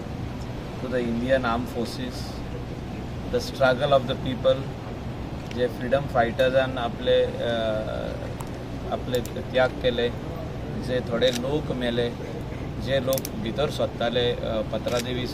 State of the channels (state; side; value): identical; both; correlation 1.00